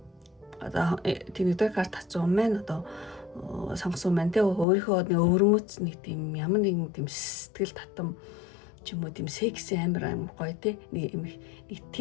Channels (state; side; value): drops out; right; at 4.7 s